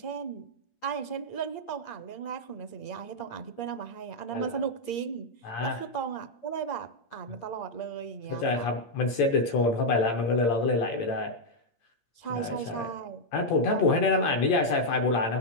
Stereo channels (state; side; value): late; right; 8.6 ms